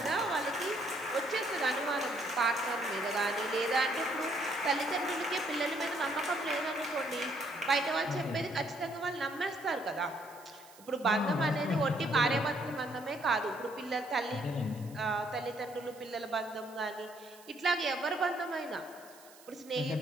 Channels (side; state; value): right; noise; hiss, 22 dB below the sound